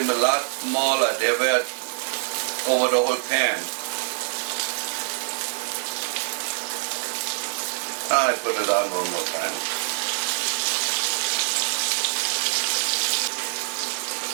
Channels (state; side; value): silent; left; digital silence